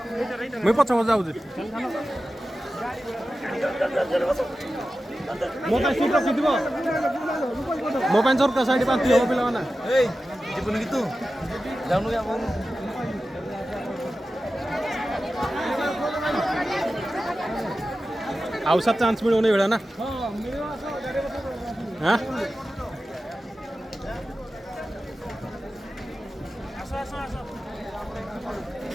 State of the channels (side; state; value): both; normal; correlation 0.94